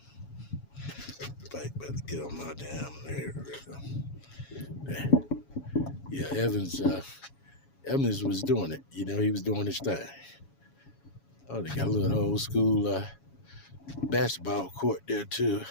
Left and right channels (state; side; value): late; right; 7.2 ms